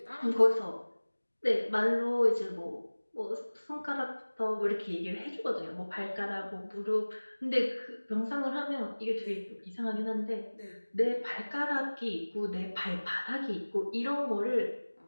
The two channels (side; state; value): both; inverted; correlation -1.00